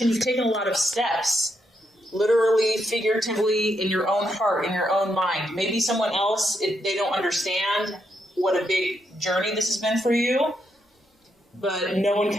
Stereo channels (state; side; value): normal; both; correlation 0.79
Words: You've taken a lot of steps, literally, figuratively, in your own heart, in your own mind. Maybe someone else, they don't understand what a big journey this has been for you, but no one